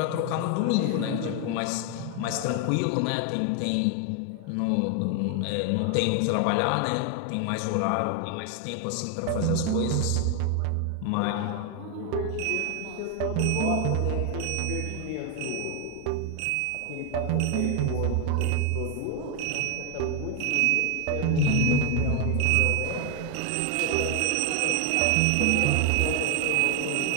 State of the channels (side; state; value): both; different; correlation 0.01